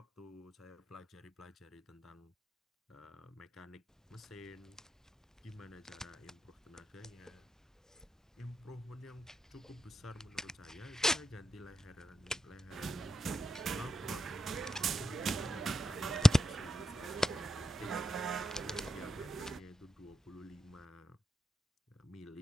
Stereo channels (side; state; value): both; normal; correlation 0.85